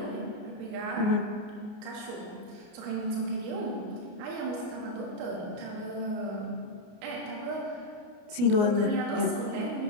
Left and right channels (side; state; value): left; late; 29 ms